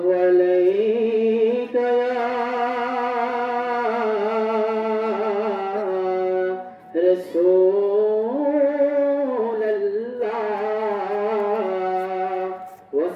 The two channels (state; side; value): identical; both; correlation 1.00